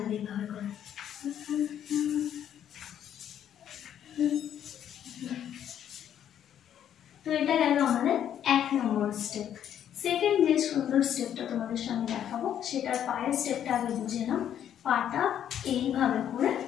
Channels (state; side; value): quieter; right; 10.0 dB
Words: এইভাবে করে। তো এটা গেল আমাদের 1 নম্বর স্টেপ। সেকেন্ড যে সুন্দর স্টেপটা তোমাদের সামনে দেখাবো সেটার পায়ের স্টেপটা আগে বুঝে নাও। পাটা এইভাবে